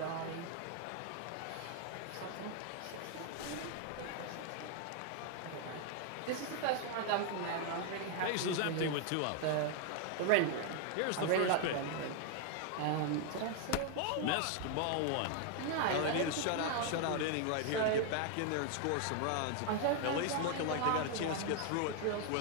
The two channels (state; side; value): different; both; correlation 0.00